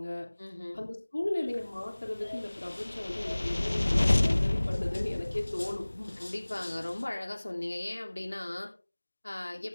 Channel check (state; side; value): inverted; both; correlation -1.00